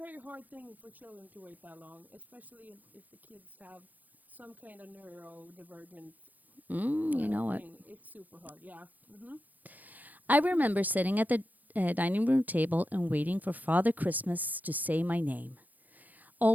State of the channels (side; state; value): left; late; 0.082 ms